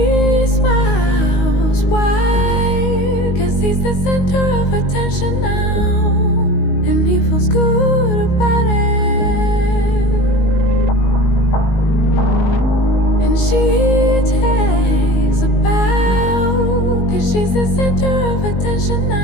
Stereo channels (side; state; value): right; late; 19 ms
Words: smiles wide. he's the center of attention now, and he feels good about it. And she takes a bow, 'cause she's the center of attention